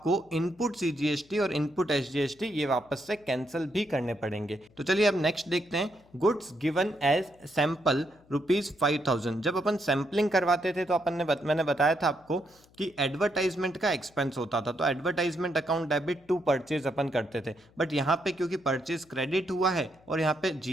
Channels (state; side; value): noise; left; hum, 29 dB below the sound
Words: इनपुट सीजीएसटी और इनपुट एसजीएसटी ये वापस से कैंसिल भी करने पड़ेंगे। तो चलिए अब नेक्स्ट देखते हैं। Goods given as sample ₹5,000। जब अपन सैंपलिंग करवाते थे तो अपन ने मैंने बताया था आपको कि एडवर्टाइजमेंट का एक्सपेंस होता था, तो advertisement account debit to purchase अपन करते थे। बट यहाँ पे क्योंकि परचेज क्रेडिट हुआ है और यहाँ पे